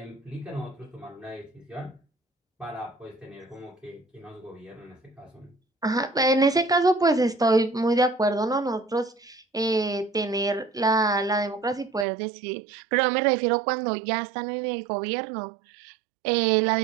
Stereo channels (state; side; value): drops out; left; at 12.1 s